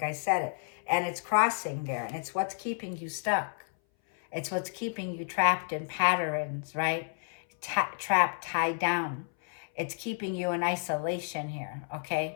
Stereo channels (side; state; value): right; silent; 57 dB below the other